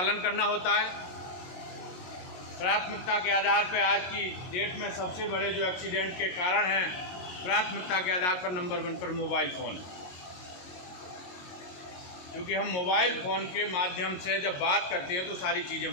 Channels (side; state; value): right; late; 22 ms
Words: करना होता है। प्राथमिकता के आधार पर आज की डेट में सबसे बड़े जो एक्सीडेंट के कारण हैं, प्राथमिकता के आधार पर नंबर 1 पर मोबाइल फ़ोन है, क्योंकि हम मोबाइल फ़ोन के माध्यम से जब बात करते हैं तो सारी